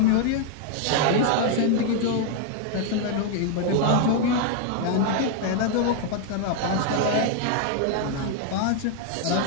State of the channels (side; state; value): both; different; correlation 0.00